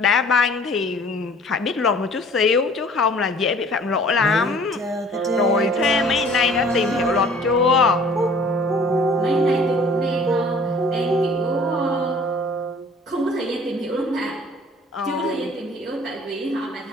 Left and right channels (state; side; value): normal; both; correlation 0.52